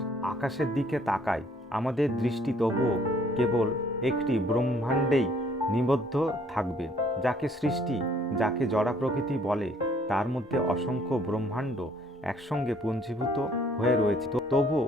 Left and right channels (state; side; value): normal; both; correlation 0.61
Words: আকাশের দিকে তাকাই, আমাদের দৃষ্টি তবুও কেবল একটি ব্রহ্মাণ্ডেই নিবদ্ধ থাকবে। যাকে সৃষ্টি, যাকে জড়া প্রকৃতি বলে, তার মধ্যে অসংখ্য ব্রহ্মাণ্ড একসঙ্গে পুঞ্জীভূত হয়ে রয়েছে। তবুও